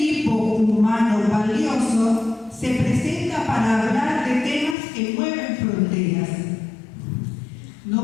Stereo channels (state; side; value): drops out; right; at 4.8 s